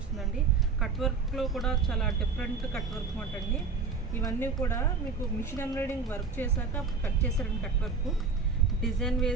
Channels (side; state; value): left; quieter; 4.8 dB